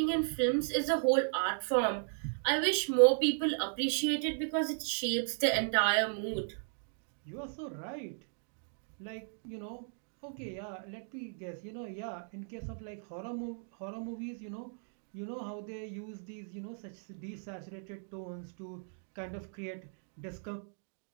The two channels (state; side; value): silent; left; digital silence